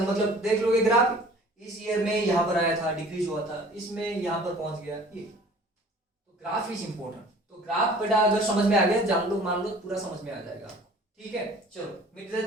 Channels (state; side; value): normal; both; correlation 0.48